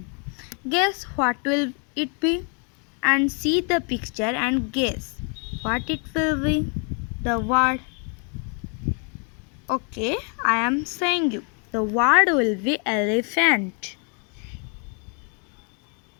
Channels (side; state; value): right; quieter; 38.6 dB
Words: Guess what will it be? And see the picture and guess what it will be. The word. Okay, I am saying you. The word will be elephant.